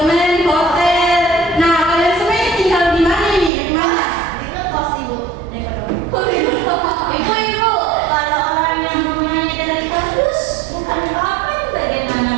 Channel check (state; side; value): drops out; left; at 3.5 s